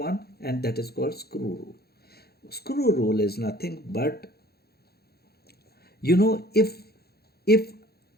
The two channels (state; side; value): late; right; 0.46 ms